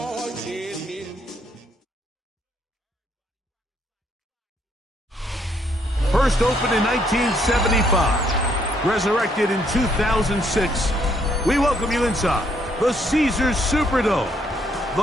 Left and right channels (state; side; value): normal; both; correlation 0.70